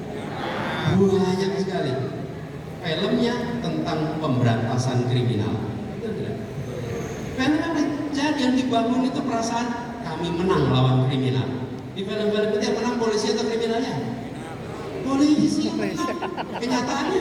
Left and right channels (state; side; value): identical; both; correlation 1.00